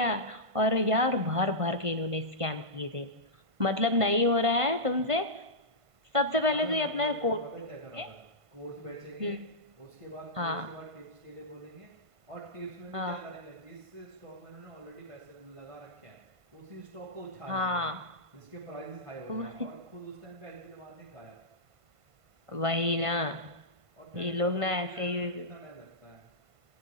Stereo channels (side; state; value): left; late; 1.5 ms